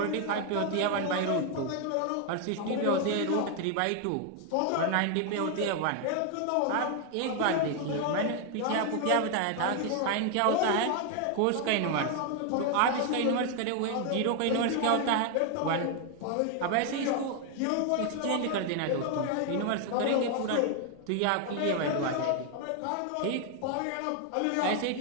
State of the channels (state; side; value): different; both; correlation 0.00